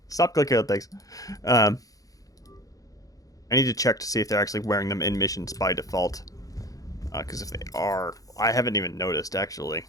Stop clicking on things. I need to check to see if they're actually wearing them in missions by default. Because if they are, I haven't even noticed actually.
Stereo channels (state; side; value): late; right; 0.17 ms